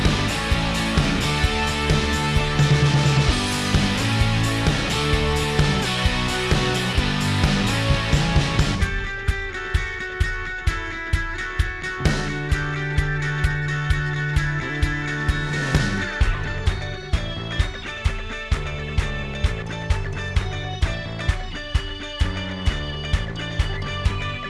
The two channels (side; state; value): both; identical; correlation 1.00